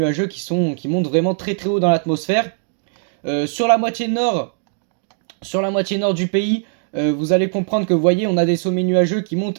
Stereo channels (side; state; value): left; silent; digital silence